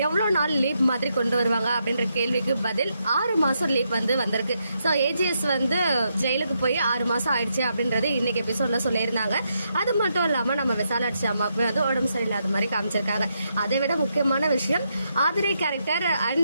எவ்வளவு நாள் லீவ் மாதிரி கொண்டு வருவாங்க அப்படின்ற கேள்விக்கு பதில் 6 மாசம் லீவ் வந்து வந்திருக்கு. ஸோ ஏஜிஎஸ் வந்து ஜெயிலுக்கு போய் 6 மாசம் ஆயிடுச்சு அப்படின்றது இன்னைக்கு எபிசோட்ல சொல்லியிருந்தாங்க. அது மட்டும் இல்லாம நம்ம விசாலாட்சி அம்மாவுக்கு வந்து உடம்பு சரியில்லாத மாதிரி காமிச்சிருக்காங்க. அதை விட முக்கியமான விஷயம் ஆதிரை கேரக்டர்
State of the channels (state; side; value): inverted; both; correlation -0.80